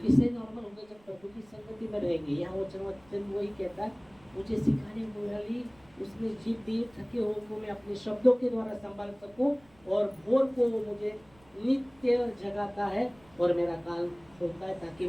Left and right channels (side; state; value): right; noise; rumble, 29 dB below the sound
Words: नॉर्मल होगा? जब प्रभु की संगति में रहेंगे। यहाँ वचन वही कहता है, मुझे सिखाने वाली उसने जीभ दी, थके हुए को मैं अपने शब्दों के द्वारा संभाल सकूं, और भोर को वो मुझे नित्य जगाता है और मेरा कान खोलता है ताकि